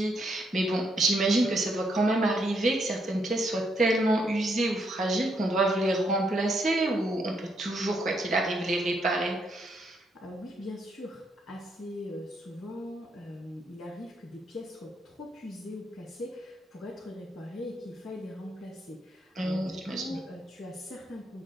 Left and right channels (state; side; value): normal; both; correlation 0.76